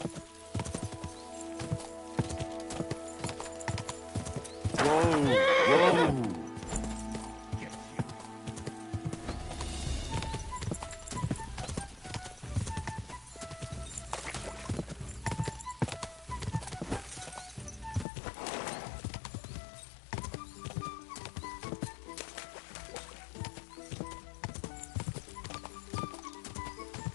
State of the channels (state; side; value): drops out; right; at 18.1 s